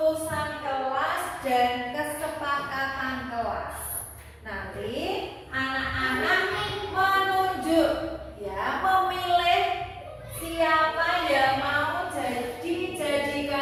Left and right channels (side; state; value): both; identical; correlation 1.00